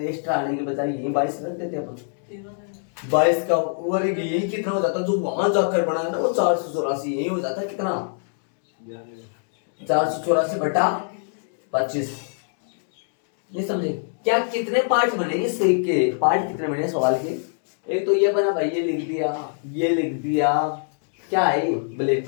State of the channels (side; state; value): right; silent; digital silence